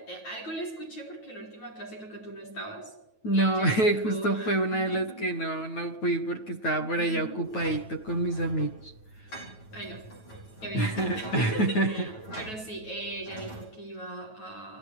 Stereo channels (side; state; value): right; late; 9.2 ms